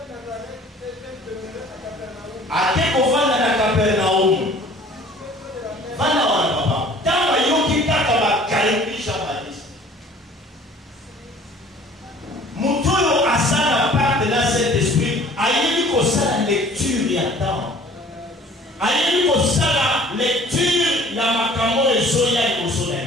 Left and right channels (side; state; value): both; normal; correlation 0.51